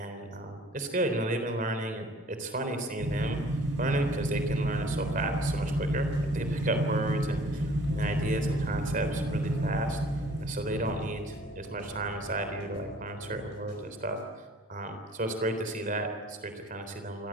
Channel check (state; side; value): normal; both; correlation 0.53